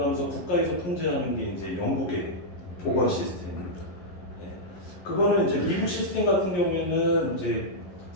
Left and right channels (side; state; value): right; late; 11 ms